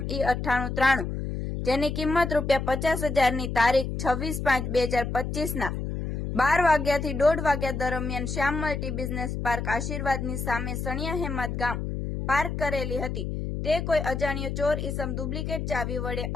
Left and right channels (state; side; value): noise; left; hum, 3 dB below the sound